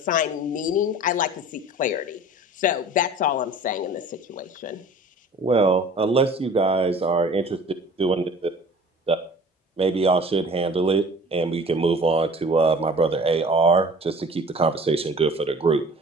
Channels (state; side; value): normal; both; correlation 0.45